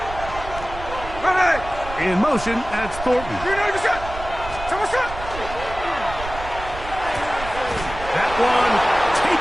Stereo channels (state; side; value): noise; right; rumble, 11 dB below the sound